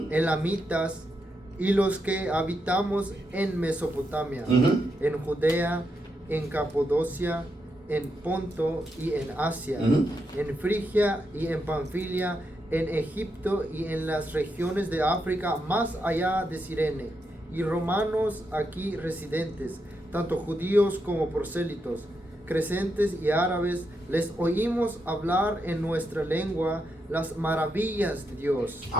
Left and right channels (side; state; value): both; normal; correlation 0.83